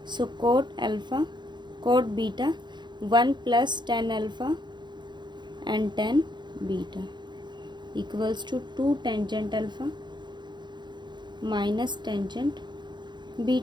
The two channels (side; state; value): left; late; 0.21 ms